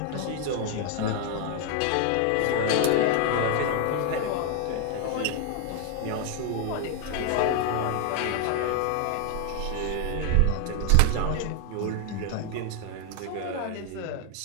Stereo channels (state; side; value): different; both; correlation 0.00